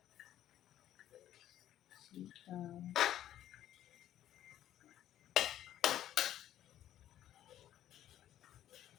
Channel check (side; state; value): right; quieter; 12.1 dB